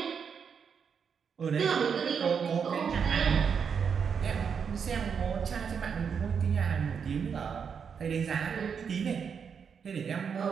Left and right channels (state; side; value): quieter; left; 6.7 dB